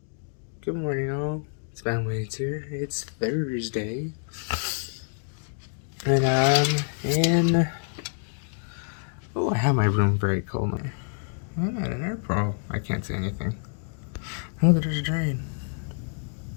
Good morning, all. It's Spamwaits here. It's Thursday. And I'm in... Oh, I have my room very cold now. I'm at an airport. I can't see anything. Oh, there's a drain.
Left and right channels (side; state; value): right; silent; 60 dB below the other